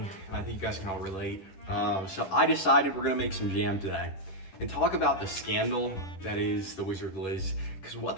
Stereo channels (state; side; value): late; right; 10 ms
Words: and I think you guys can all relate. So I decided we're gonna make some jam today and talk about the scandal that is the Wizardliz, because